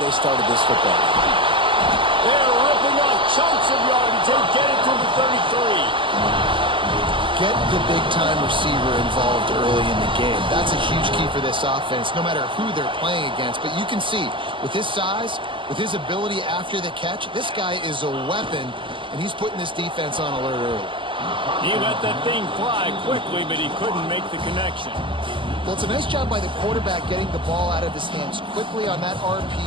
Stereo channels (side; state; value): left; late; 0.25 ms